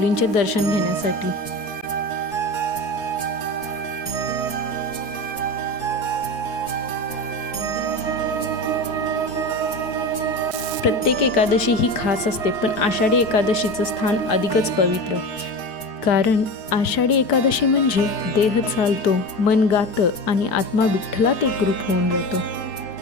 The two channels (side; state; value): right; late; 4.6 ms